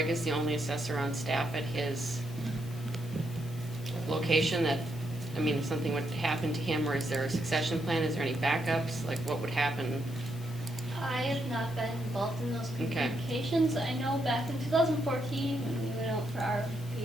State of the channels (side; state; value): left; noise; hiss, 21 dB below the sound